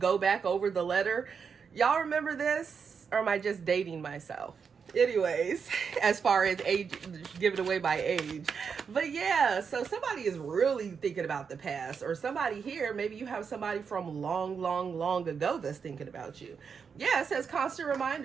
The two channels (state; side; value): quieter; left; 6.2 dB